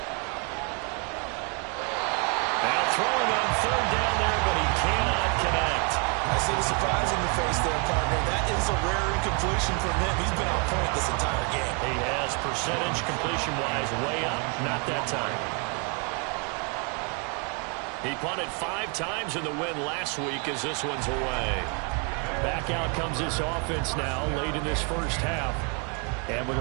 Now throwing on 3rd down there, but he cannot connect. I see the surprise in the face there, partner. That is a rare incompletion from him. He's been on point this entire game. He has, percentage completion-wise way up. Not that time. He punted 5 times in the win last week as this one's away. Back out comes this offense now late in this first half. And with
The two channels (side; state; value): left; quieter; 35.8 dB